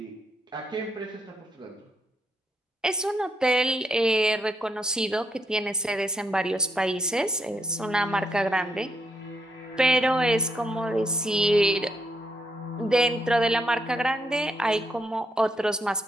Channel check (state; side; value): normal; both; correlation 0.76